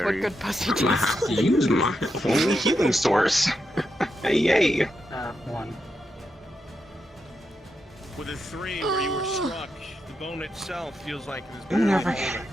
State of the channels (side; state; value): both; normal; correlation 0.85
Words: what good pussy tastes. Use my only healing source. Hey, yay! 1. With a 3, where you were struck, the bone itself feels like it has been older.